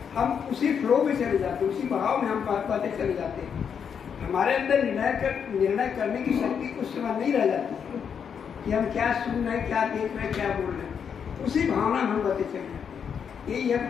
हम उसी फ्लो में चले जाते हैं, उसी भाव में हम बातें चले जाते हैं। हमारे अंदर निर्णय करने की शक्ति उस समय नहीं रह जाती है कि हम क्या सुन रहे हैं, क्या देख रहे हैं, क्या बोल रहे हैं। उसी भावना में हम बातें चले जाते हैं। यही है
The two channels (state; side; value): quieter; right; 7.3 dB